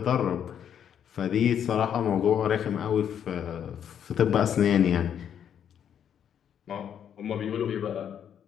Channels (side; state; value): right; quieter; 8.9 dB